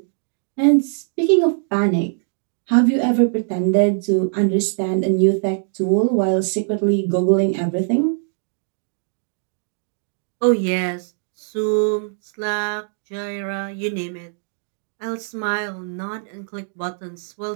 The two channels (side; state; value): left; silent; digital silence